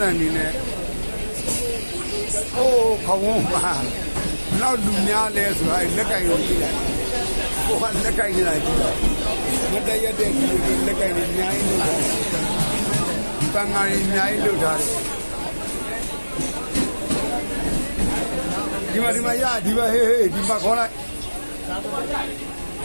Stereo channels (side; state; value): both; inverted; correlation -1.00